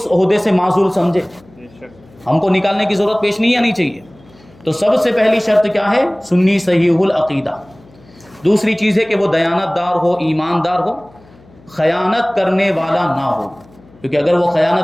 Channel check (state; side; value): noise; left; hum, 27 dB below the sound